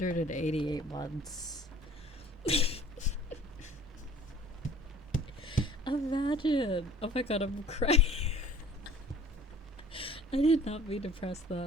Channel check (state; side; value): normal; both; correlation 0.48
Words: months. Imagine. Oh my god, I'm crying. I did not mean to press